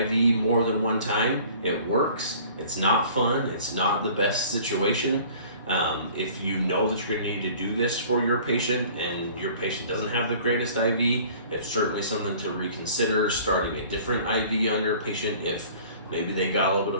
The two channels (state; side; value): inverted; both; correlation -0.49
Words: more than one time. It works. It's not fun. It's not the best situation. If you know that you're going to need to do this for your patient and your patient doesn't have the greatest IV, it's certainly something to reconsider starting a different IV on your patient if maybe they got a little bit